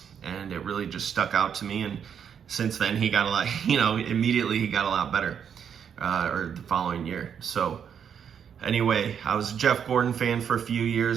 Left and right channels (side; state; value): left; quieter; 7.9 dB